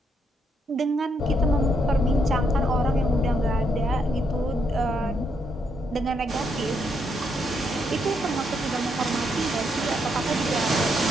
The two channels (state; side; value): normal; both; correlation 0.77